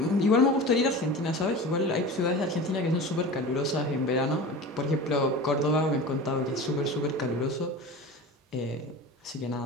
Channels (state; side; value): normal; both; correlation 0.33